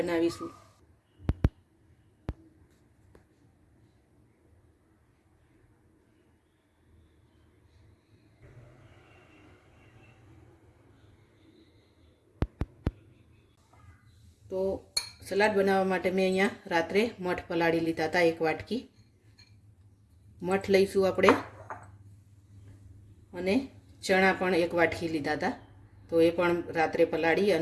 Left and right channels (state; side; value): identical; both; correlation 1.00